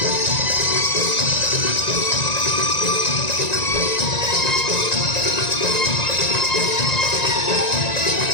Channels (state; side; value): late; right; 1.9 ms